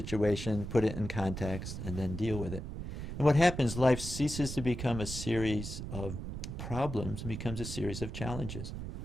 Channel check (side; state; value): right; noise; rumble, 7 dB below the sound